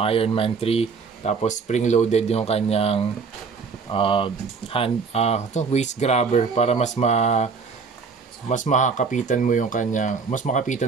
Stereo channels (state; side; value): quieter; left; 5.2 dB